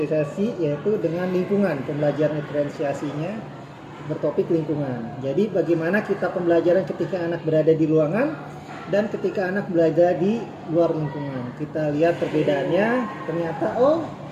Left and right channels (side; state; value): both; identical; correlation 1.00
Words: yaitu dengan lingkungan, pembelajaran diferensiasinya bertopik lingkungan. Jadi bagaimana kita pembelajaran ketika anak berada di ruangan dan ketika anak belajar di luar lingkungan. Kita lihat perbedaannya, ternyata